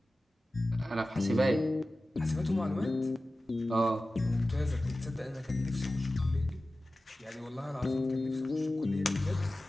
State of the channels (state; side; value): normal; both; correlation 0.96